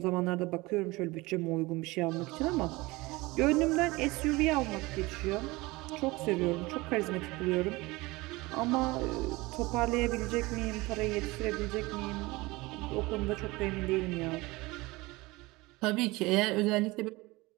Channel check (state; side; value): quieter; left; 22.0 dB